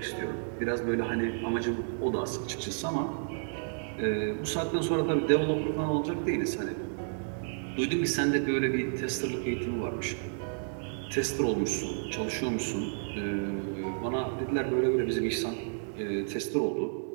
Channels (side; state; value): left; silent; digital silence